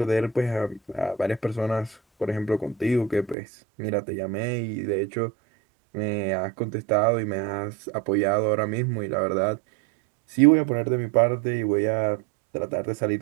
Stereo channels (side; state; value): left; drops out; at 3.4 s